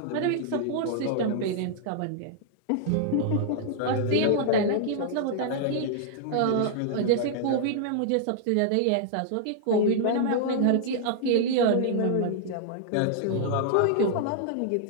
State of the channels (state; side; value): different; both; correlation -0.01